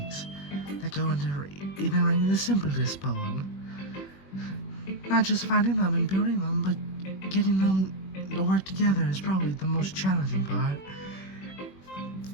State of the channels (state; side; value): late; right; 21 ms